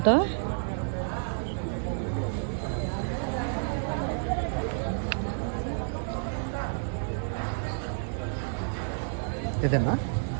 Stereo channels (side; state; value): left; silent; digital silence